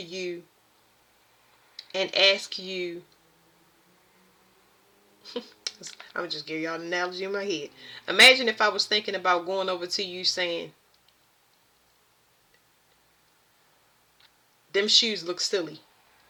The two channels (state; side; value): identical; both; correlation 1.00